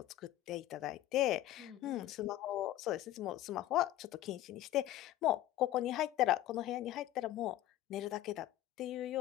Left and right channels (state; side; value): quieter; right; 14.2 dB